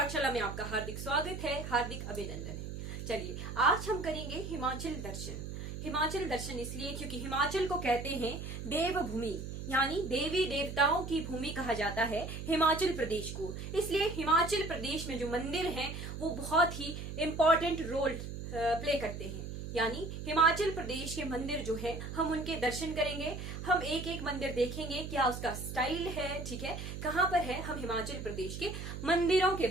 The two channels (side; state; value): right; noise; hum, 7 dB below the sound